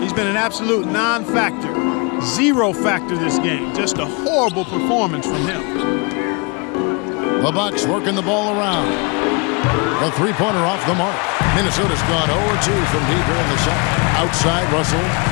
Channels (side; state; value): right; quieter; 31.5 dB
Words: been an absolute non-factor. Zero factor this game. Just a horrible performance from him. The Bucks working the ball around. A three-pointer off the mark. Minnesota's gone 0-2 from deep here in the second. Outside, Russell.